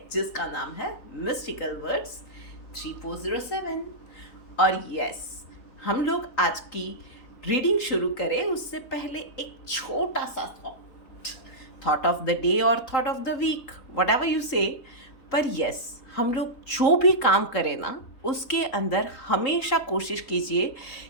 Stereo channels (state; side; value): late; right; 3.8 ms